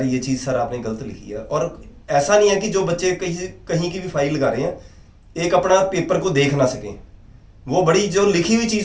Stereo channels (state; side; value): identical; both; correlation 1.00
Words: ये चीज़ सर आपने गलत लिखी है। और ऐसा नहीं है कि जो बच्चे कहीं की भी फाइल लगा रहे हैं एक अपना पेपर को देख ना सकें, वो बड़ी जो लिखी हुई